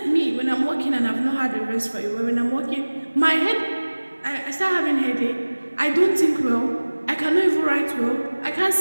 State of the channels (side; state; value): both; inverted; correlation -1.00